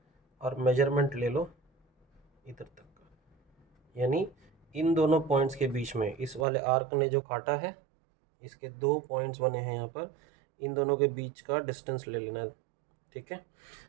और मेजरमेंट ले लो इधर तक का, यानी इन दोनों पॉइंट्स के बीच में इस वाले आर्क ने जो काटा है, इसके 2 पॉइंट्स बने हैं यहाँ पर, इन दोनों के बीच का डिस्टेंस ले लेना, ठीक है।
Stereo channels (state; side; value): drops out; left; at 6.5 s